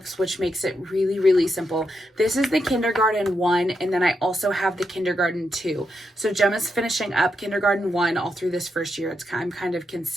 which makes it really, really simple. This is the kindergarten 1, and then I also have the kindergarten 2. So Gemma's finishing up kindergarten 1 all through this first year. I'm kind of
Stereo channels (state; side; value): normal; both; correlation 0.83